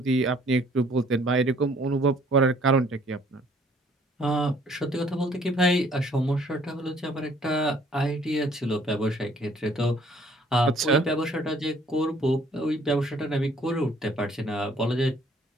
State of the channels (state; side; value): normal; both; correlation 0.60